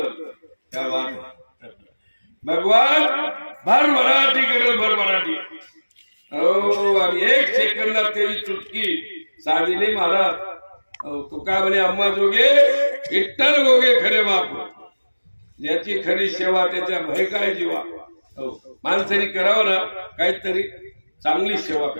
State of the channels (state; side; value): inverted; both; correlation -1.00